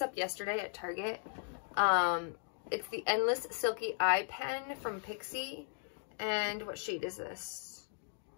up yesterday at Target. It's the Endless Silky Eye Pen from Pixie, and what shade is this?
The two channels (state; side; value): silent; right; 53 dB below the other